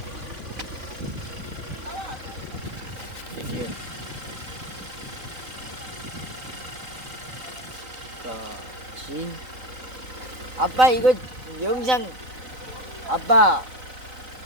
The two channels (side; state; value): left; late; 3.9 ms